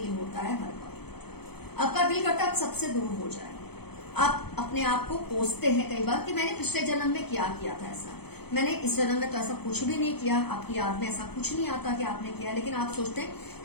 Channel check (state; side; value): late; right; 0.97 ms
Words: होता है हर वक्त। आपका दिल करता है आप सबसे दूर हो जाए। आप अपने आप को कोसते हैं कई बार कि मैंने पिछले जन्म में क्या किया था ऐसा, मैंने इस जन्म में तो ऐसा कुछ भी नहीं किया। आपकी याद में ऐसा कुछ नहीं आता कि आपने किया, लेकिन आप सोचते हैं